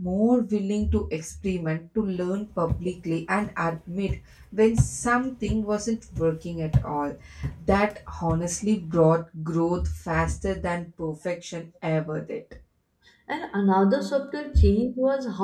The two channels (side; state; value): both; identical; correlation 1.00